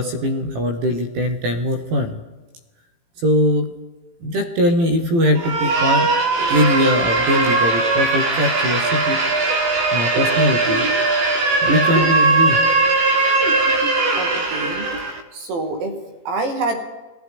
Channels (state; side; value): late; left; 18 ms